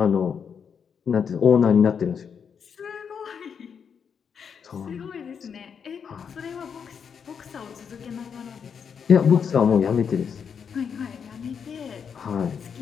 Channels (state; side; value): quieter; right; 6.9 dB